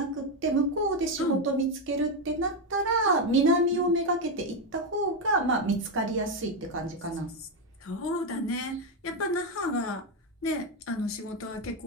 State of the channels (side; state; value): both; normal; correlation 0.07